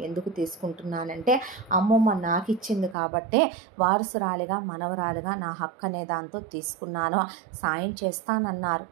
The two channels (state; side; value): drops out; left; at 3.0 s